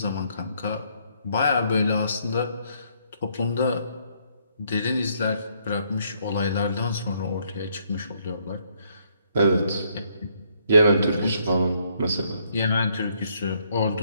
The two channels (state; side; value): inverted; both; correlation -0.70